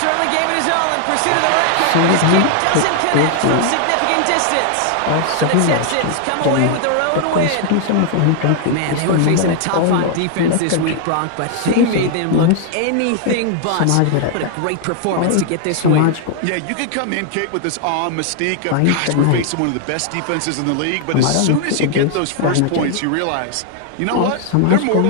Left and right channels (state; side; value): different; both; correlation 0.00